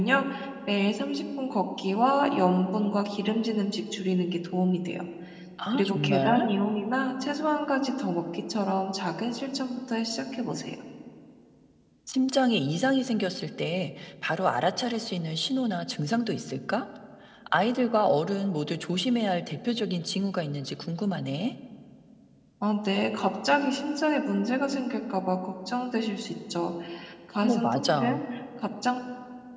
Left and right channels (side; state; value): both; identical; correlation 1.00